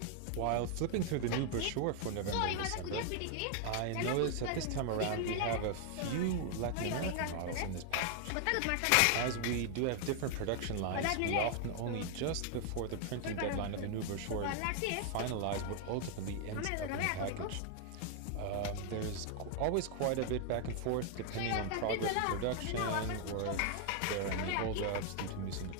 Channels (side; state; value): both; different; correlation 0.00